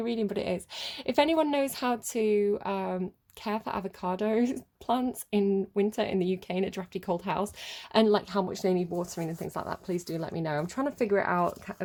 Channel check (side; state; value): both; identical; correlation 1.00